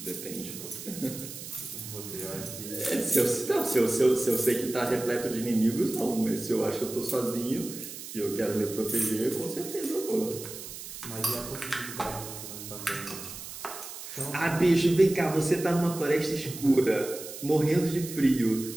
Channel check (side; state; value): right; noise; hiss, 11 dB below the sound